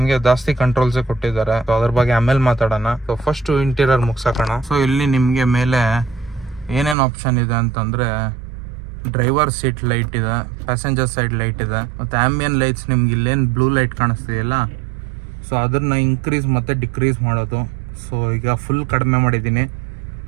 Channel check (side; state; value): left; drops out; at 7.0 s